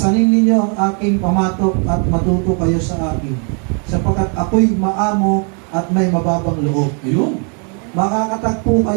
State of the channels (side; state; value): left; quieter; 38.6 dB